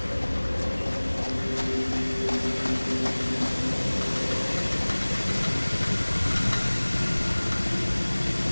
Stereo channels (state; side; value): inverted; both; correlation -1.00